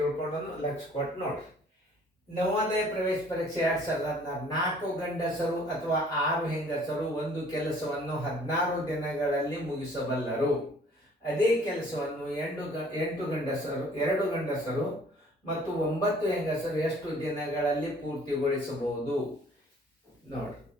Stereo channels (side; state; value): both; normal; correlation 0.55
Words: ಲಕ್ಷ ಕೊಟ್ಟು ನೋಡ್ರಿ. ನವೋದಯ ಪ್ರವೇಶ ಪರೀಕ್ಷೆ 2016 4 ಗಂಡಸರು ಅಥವಾ 6 ಹೆಂಗಸರು ಒಂದು ಕೆಲಸವನ್ನು 16 ದಿನಗಳಲ್ಲಿ ಮುಗಿಸಬಲ್ಲರು. ಅದೇ ಕೆಲಸವನ್ನು 8 ಗಂಡಸರು 2 ಗಂಡಸರು ಮತ್ತು 9 ಹೆಂಗಸರು ಎಷ್ಟು ದಿನಗಳಲ್ಲಿ ಪೂರ್ತಿಗೊಳಿಸಬಹುದು? ನೋಡ್ರಿ,